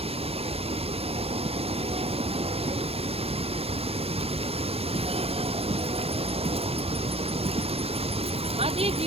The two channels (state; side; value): late; left; 0.29 ms